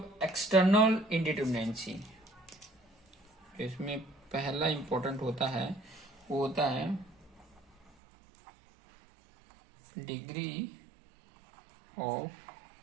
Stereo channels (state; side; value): drops out; left; at 7.9 s